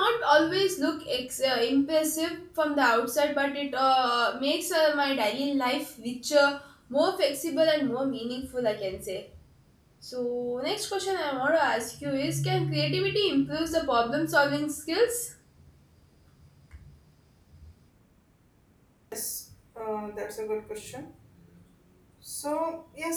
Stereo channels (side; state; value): both; identical; correlation 1.00